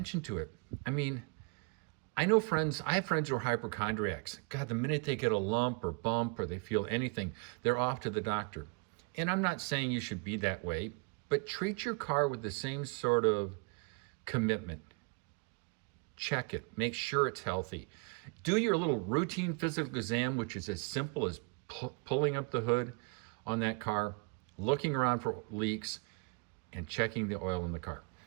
to it. I mean, I have friends who are hypochondriacs. God, the minute they get a lump or bump or they feel anything, they're off to the doctor. And I'm not saying you should be that way, but treat your car with the same sort of commitment. Check it, make sure it's healthy. Do your little routine physical exam, which is as simple as pulling up the hood on that car, looking around for leaks, and checking the oil in the car.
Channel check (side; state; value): left; quieter; 32.4 dB